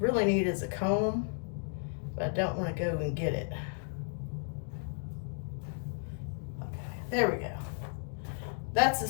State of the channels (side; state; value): right; silent; 55 dB below the other